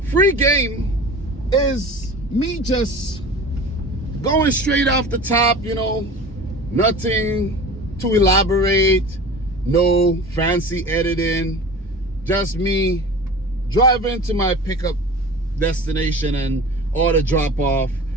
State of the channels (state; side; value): normal; both; correlation 0.37